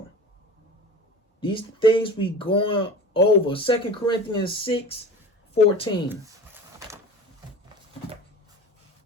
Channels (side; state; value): both; normal; correlation 0.36